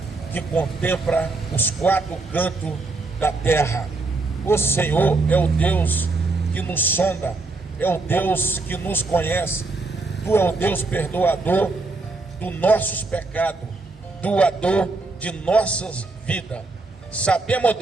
que contempla os quatro cantos da terra. O Senhor é o Deus que nos sonda, é o Deus que nos conhece. Tu é o Deus perdoador dos nossos pecados, doador de nossas vidas. Sabemos,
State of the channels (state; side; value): quieter; left; 3.5 dB